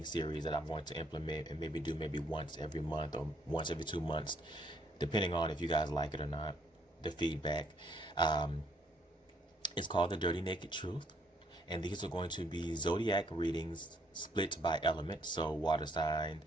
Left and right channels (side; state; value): both; normal; correlation 0.68